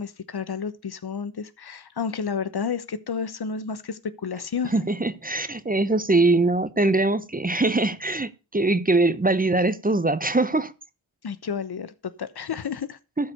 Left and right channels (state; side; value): normal; both; correlation 0.46